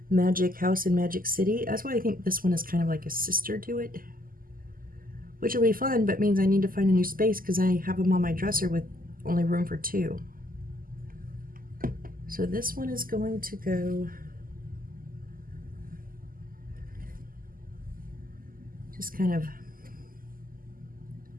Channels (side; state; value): left; late; 0.41 ms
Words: magic house in Magic City. That's why I think this one is kind of like a sister to it, which will be fun, but means I need to find a new space because I have them on my dresser with only room for 2. So this one is going to go Just kind of